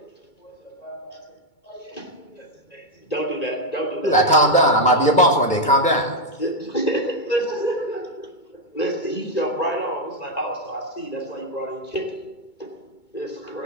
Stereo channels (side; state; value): right; late; 2.2 ms